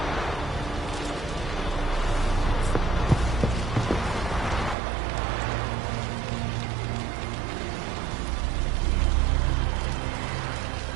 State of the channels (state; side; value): drops out; left; at 4.8 s